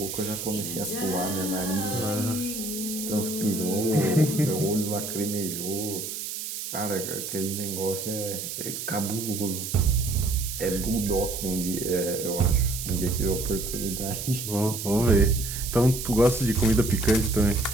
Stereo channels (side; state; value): right; noise; hiss, 6 dB below the sound